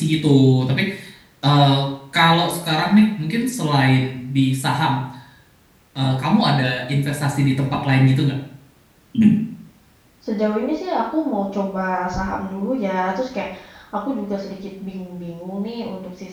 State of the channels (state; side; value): identical; both; correlation 1.00